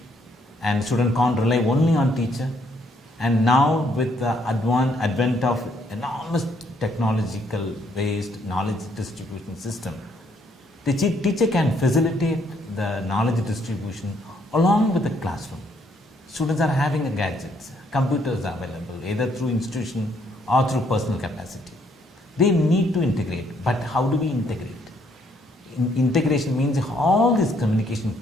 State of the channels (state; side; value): normal; both; correlation 0.69